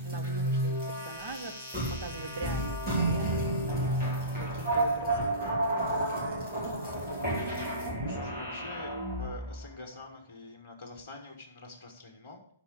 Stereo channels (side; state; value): both; inverted; correlation -0.31